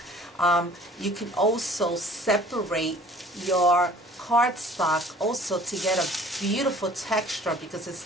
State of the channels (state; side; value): normal; both; correlation 0.51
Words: You can also separate your cardstock also to get a beautiful texture, because it's